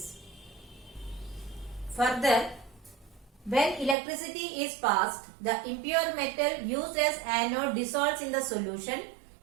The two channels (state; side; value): drops out; left; at 4.0 s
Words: Further, when electricity is passed, the impure metal used as anode dissolves in the solution